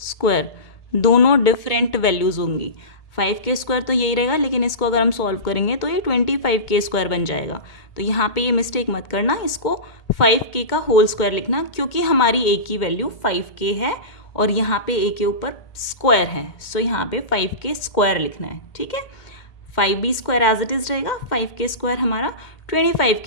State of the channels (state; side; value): late; right; 2.2 ms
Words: स्क्वायर दोनों डिफरेंट वैल्यूज़ होंगी। 5k स्क्वायर तो यही रहेगा, लेकिन इसको अगर हम सॉल्व करेंगे तो ये 25k स्क्वायर बन जाएगा। तो यहाँ पे ये मिस्टेक मत करना, इसको 5k का होल स्क्वायर लिखना, क्योंकि हमारी a की वैल्यू 5k है और यहाँ पे a के ऊपर स्क्वायर है, सो यहाँ पे 5k स्क्वायर लिखना है, ठीक है। 5b square as it is रहेगा, 5k स्क्वायर हमारा